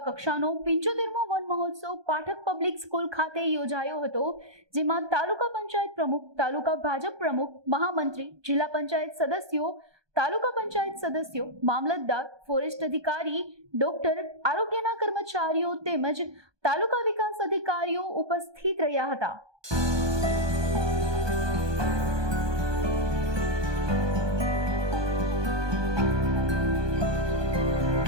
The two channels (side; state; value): left; late; 1.2 ms